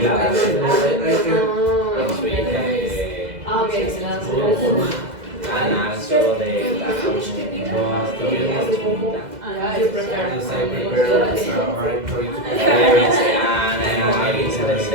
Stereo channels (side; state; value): left; late; 2.0 ms